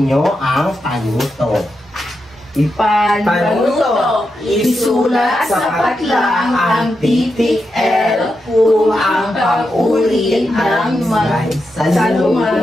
nyo ang panuto. Panuto, isulat sa patlang ang titik L kung ang pang-uri ng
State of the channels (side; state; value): both; normal; correlation 0.87